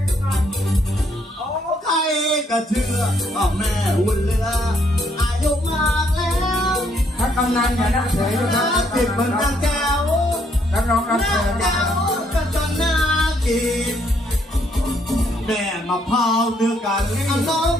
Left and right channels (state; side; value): normal; both; correlation 0.70